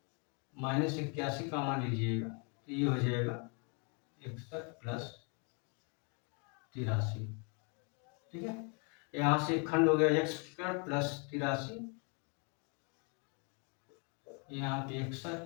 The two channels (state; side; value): quieter; right; 36.1 dB